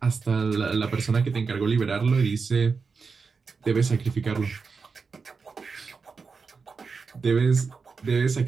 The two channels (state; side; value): quieter; left; 5.0 dB